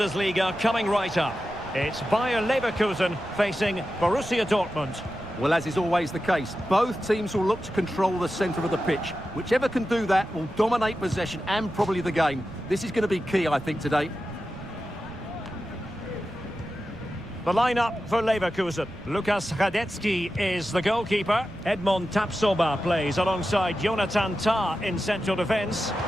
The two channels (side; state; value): right; noise; rumble, 17 dB below the sound